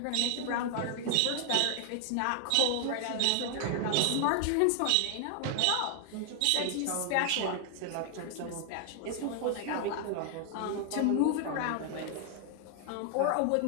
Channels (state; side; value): different; both; correlation 0.00